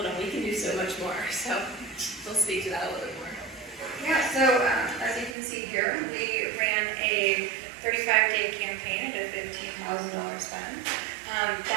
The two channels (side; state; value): left; drops out; at 5.4 s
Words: on, we can do so much more. So we'll speak to that a little bit more. Yeah, so as you can see here, we ran a 35-day campaign at a $15,000 spend.